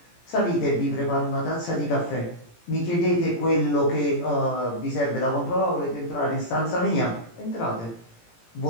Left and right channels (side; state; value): right; late; 17 ms